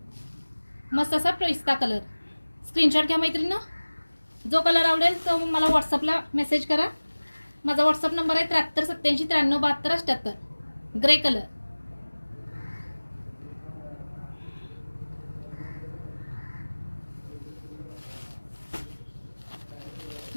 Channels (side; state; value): both; inverted; correlation -1.00